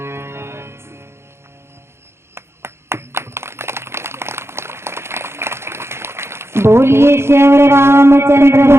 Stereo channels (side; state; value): left; late; 0.12 ms